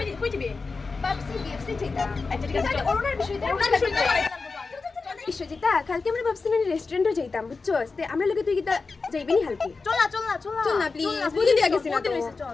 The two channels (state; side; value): quieter; right; 4.2 dB